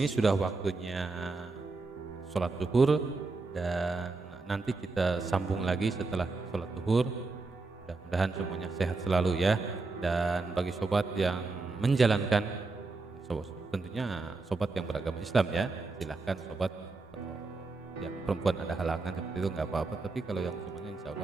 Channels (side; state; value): left; quieter; 3.7 dB